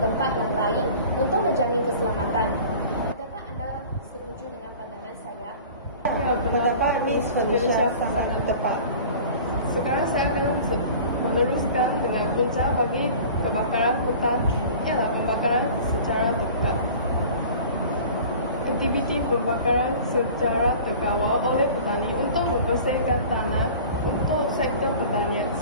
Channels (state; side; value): inverted; both; correlation -0.42